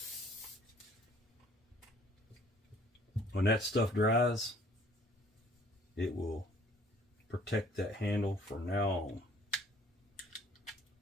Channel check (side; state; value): both; normal; correlation 0.57